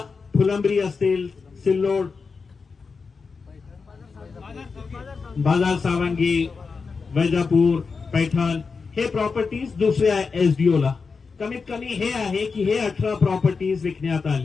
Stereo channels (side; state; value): right; quieter; 4.9 dB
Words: फुलंब्री असतील, सिल्लोड, बाजार सावंगी, वैजापूर, पैठण, हे प्रॉपर्टीज दुसऱ्या SDO ला. कमीत कमी हे आहे की हे 18 प्रॉपर्टीज विकण्यात